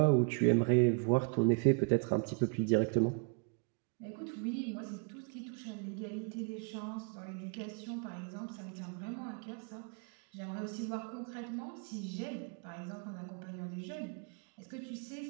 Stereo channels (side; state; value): left; quieter; 33.8 dB